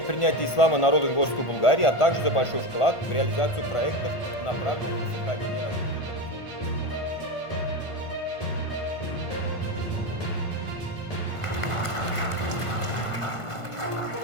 принятия ислама народом Горской Булгарии, а также за большой вклад в реализацию проектов, направленных на сохранение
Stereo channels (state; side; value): late; right; 1.5 ms